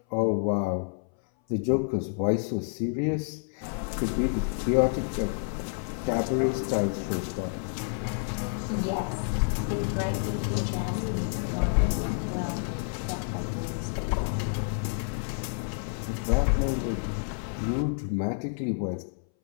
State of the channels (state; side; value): silent; right; 59 dB below the other